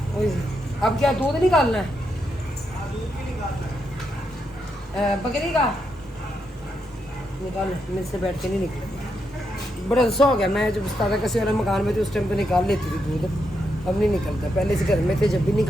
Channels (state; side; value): normal; both; correlation 0.82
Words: अब क्या दूध निकालना है? दूध भी निकालना है, बकरी का निकाल, मेरे से बैठ के नहीं निकले, बड़ा गुस्सा हो गया। मैं जब उस्ताद कसी वाला मकान में थी उस टाइम पे निकाल लेती थी दूध, अब नहीं निकलता। पहले से घर में थे जब भी